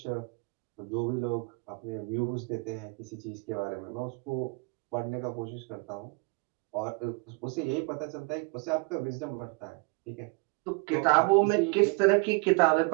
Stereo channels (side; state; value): left; quieter; 32.0 dB